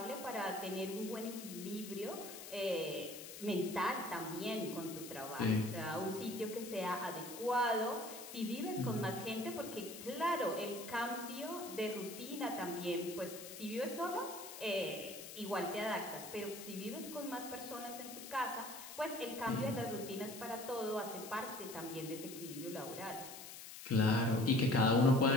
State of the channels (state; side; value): noise; left; hiss, 12 dB below the sound